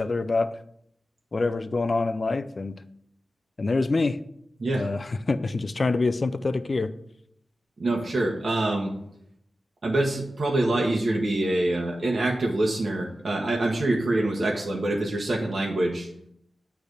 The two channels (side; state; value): both; normal; correlation 0.92